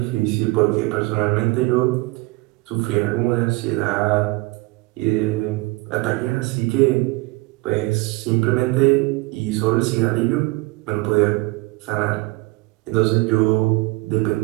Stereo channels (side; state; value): left; quieter; 23.2 dB